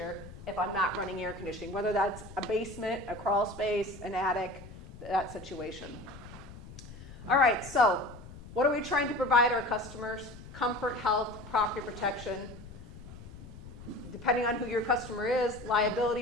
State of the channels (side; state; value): left; noise; rumble, 15 dB below the sound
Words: if I'm not running air conditioning? Whether that's a basement, a crawl space, an attic, that situation. All right, so what are we trying to provide our customers? Comfort, health, property protection. Depending on who your customer is,